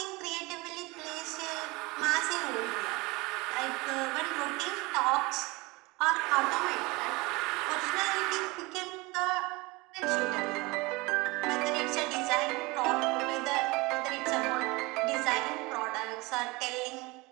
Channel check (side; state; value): left; quieter; 23.9 dB